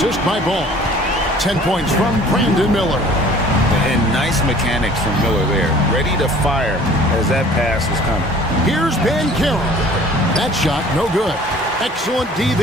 by Ball. 10 points from Brandon Miller. And nice mechanics from Miller there. Ready to fire as that pass was coming. Here's Banchero. That shot, no good. Excellent D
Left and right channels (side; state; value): both; normal; correlation 0.50